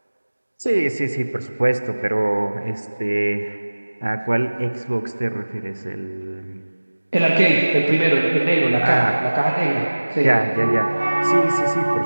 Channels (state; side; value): inverted; both; correlation -1.00